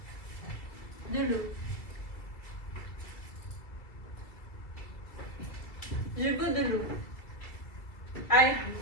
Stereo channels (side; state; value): right; late; 2.1 ms